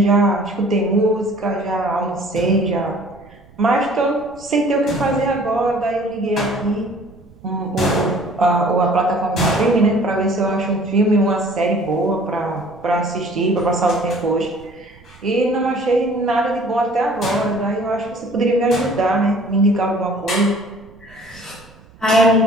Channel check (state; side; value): noise; right; rumble, 25 dB below the sound